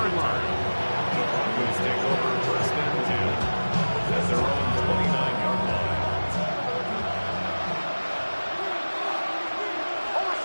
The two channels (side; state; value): both; inverted; correlation -1.00